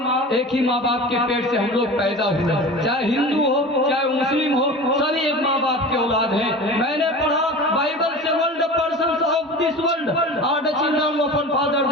ही माँ बाप के पेट से हम लोग पैदा हुए। चाहे हिंदू हो, चाहे मुस्लिम हो, सभी एक माँ बाप के औलाद हैं। मैंने पढ़ा बाइबल से, world persons of this world are the children of one father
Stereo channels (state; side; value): normal; both; correlation 0.34